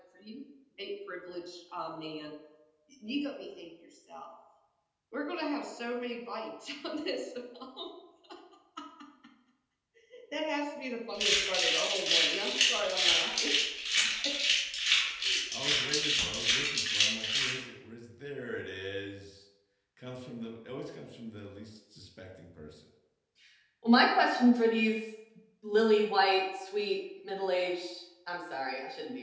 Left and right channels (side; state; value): both; identical; correlation 1.00